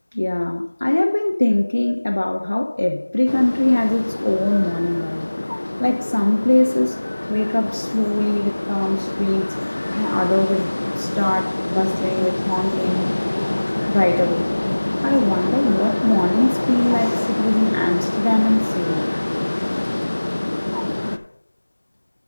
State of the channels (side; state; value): both; inverted; correlation -1.00